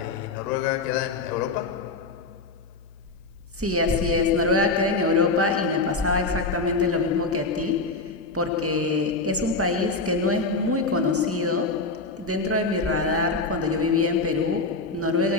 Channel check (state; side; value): quieter; right; 3.6 dB